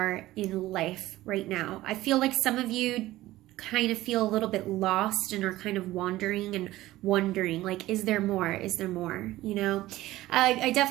in life right now. I feel like some of you kind of feel a little bit lost and are kind of wandering and wondering, like, is there more? Is there more? You know, I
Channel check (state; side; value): quieter; left; 16.5 dB